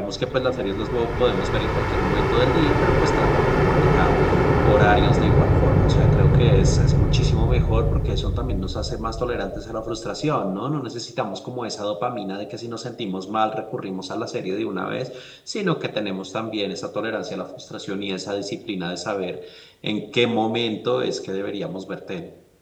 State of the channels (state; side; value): identical; both; correlation 1.00